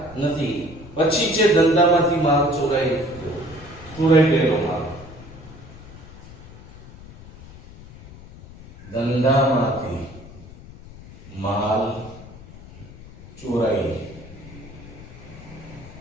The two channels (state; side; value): noise; left; rumble, 18 dB below the sound